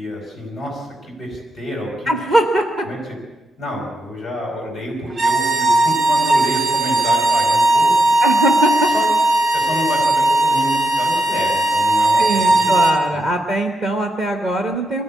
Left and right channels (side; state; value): both; normal; correlation 0.84